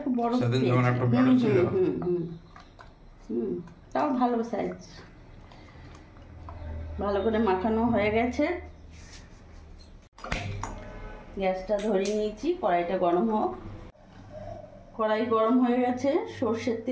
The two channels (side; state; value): both; identical; correlation 1.00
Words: বড় সেদিন যখন একটু বড় ছিল। তাও ভালো সাইজ। ভালো করে মাখানো হয়ে গেছে, গ্যাসটা ধরিয়ে নিয়েছি, কড়াইটা গরম হোক। কড়াই গরম হয়ে গেছে, সর্ষের